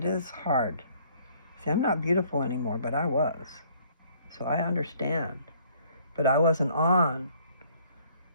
is hard. See, I'm not beautiful anymore, but I was. So I understand. But I wasn't on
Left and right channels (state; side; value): inverted; both; correlation -0.60